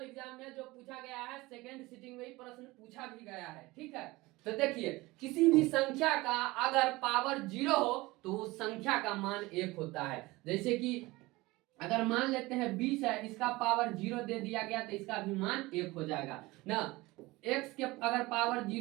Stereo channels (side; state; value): left; quieter; 21.0 dB